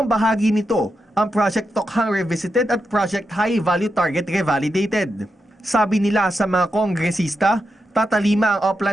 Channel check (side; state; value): both; normal; correlation 0.86